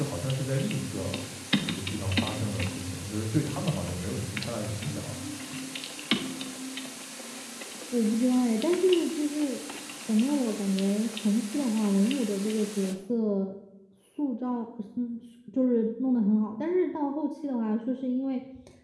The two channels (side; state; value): both; identical; correlation 1.00